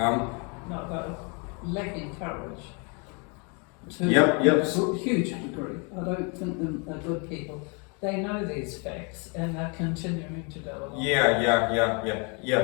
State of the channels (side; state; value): right; quieter; 34.1 dB